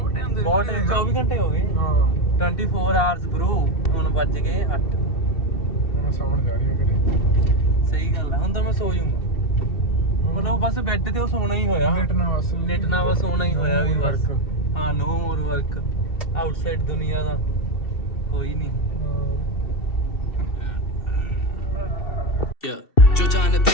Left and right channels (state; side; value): late; right; 2.7 ms